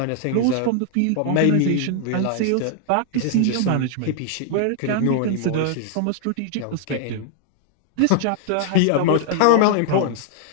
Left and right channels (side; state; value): both; different; correlation 0.00